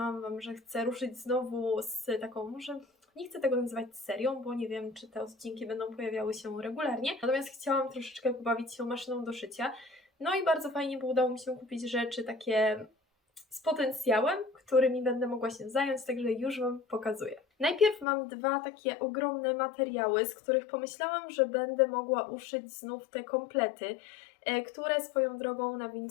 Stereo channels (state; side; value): drops out; right; at 18.1 s